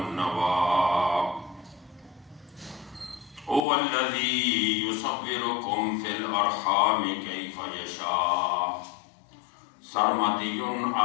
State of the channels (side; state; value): right; drops out; at 3.7 s